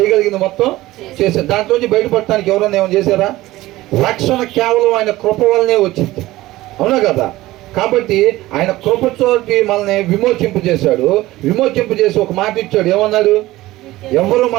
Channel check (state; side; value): quieter; left; 17.4 dB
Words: మొత్తం చేసాం. దాంట్లోంచి బయటపడటానికి ఎవరన్నా ఏమైనా చేశారా? రక్షణ కేవలం ఆయన కృప వల్లనే వచ్చింది. అవునా కదా? కాబట్టి ఆయన కృపతోటి మనల్ని విమోచింపు చేశాడు. విమోచింపు చేసి ఒక మాట ఇచ్చాడు. ఏమన్నాడు? ఎవరు